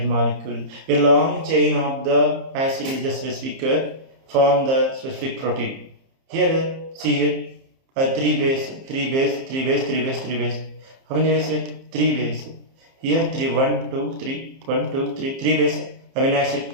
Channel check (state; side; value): late; left; 30 ms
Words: molecule. A long chain of the acid is the specific form the specific protein. Here, see here, 3 base. How many bases? 3 bases. Here 3, 1, 2, 3, 1, 2, 3, 3 base amino